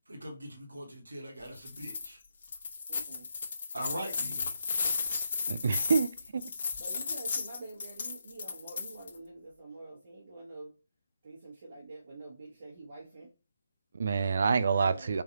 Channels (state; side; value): inverted; both; correlation -0.82